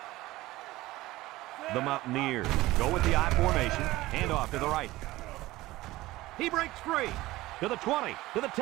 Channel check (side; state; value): left; quieter; 18.0 dB